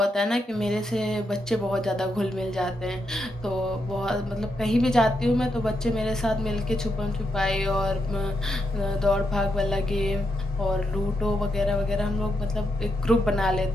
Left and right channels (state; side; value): normal; both; correlation 0.82